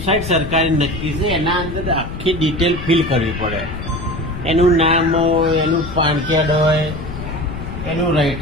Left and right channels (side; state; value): left; noise; rumble, 8 dB below the sound